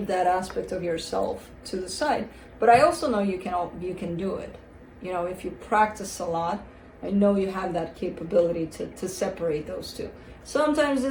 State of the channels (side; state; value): both; identical; correlation 1.00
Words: that aspect of yourself to the side, but I also know you can do it. If you practice a lot, I know you have that capability to separate those two. Sometimes